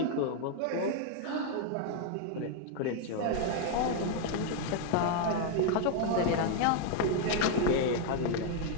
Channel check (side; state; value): both; different; correlation 0.00